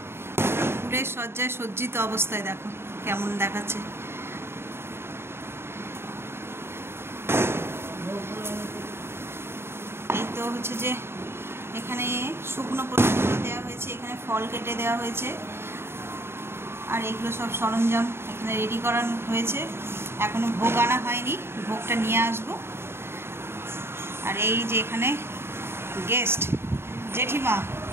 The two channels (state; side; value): late; left; 0.12 ms